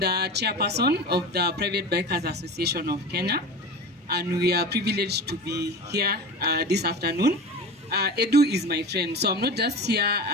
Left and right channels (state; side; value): normal; both; correlation 0.31